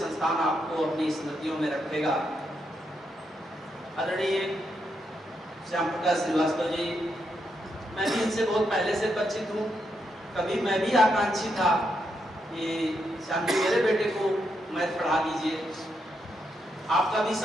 आपको अपनी स्मृतियों में रखेगा। आदरणीय श्याम प्रकाश श्रीवास्तव जी, मैं भी इनसे बहुत पहले से परिचित हूँ। कभी मैं भी आकांक्षी था कि श्याम जी मेरे बेटे को मैथ पढ़ा दीजिए। आपका भी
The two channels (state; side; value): normal; both; correlation 0.81